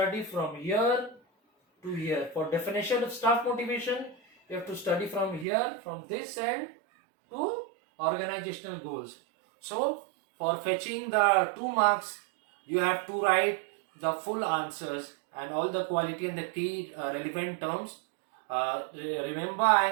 from here to here. For definition of staff motivation, you have to study from here, from this end to organizational goals. So for fetching the 2 marks, you have to write the full answers and all the quality and the key relevant terms. Remember, I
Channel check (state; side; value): drops out; left; at 5.5 s